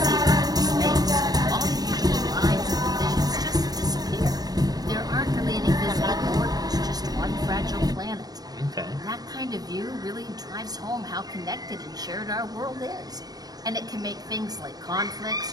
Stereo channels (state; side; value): late; left; 0.19 ms